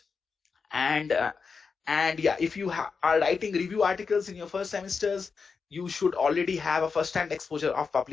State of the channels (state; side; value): quieter; right; 5.2 dB